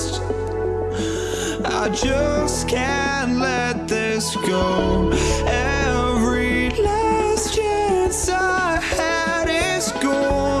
I just can't let this go. Every last chance I had is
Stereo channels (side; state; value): both; identical; correlation 1.00